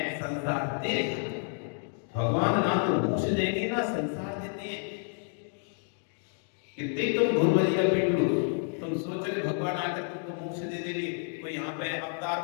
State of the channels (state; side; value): silent; right; 57 dB below the other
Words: संसार तेरे हाथ में। भगवान ना तो मोक्ष देंगे ना संसार देते हैं। कितने तुम भूल भजिया पीट लो, तुम सोच रहे भगवान आकर तुमको मोक्ष दे देंगे, कोई यहाँ पे